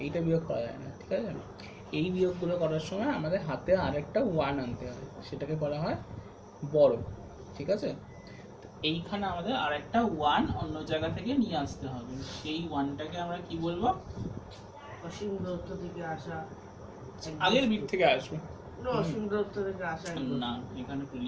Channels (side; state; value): both; identical; correlation 1.00